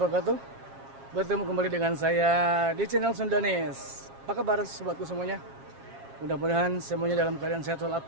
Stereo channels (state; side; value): late; left; 7.4 ms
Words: Bertemu kembali dengan saya di channel Sundanes. Apa kabar sobatku semuanya? Mudah-mudahan semuanya dalam keadaan sehat